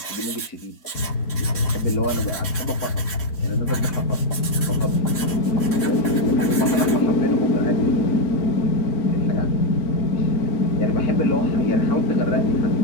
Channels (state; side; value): late; right; 3.7 ms